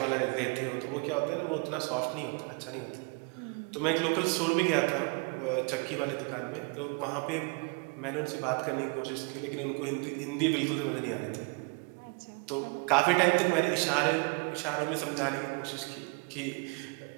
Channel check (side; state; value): left; quieter; 34.0 dB